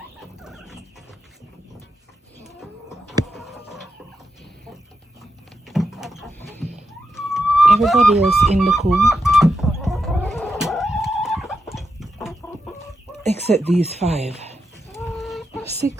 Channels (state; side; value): normal; both; correlation 0.86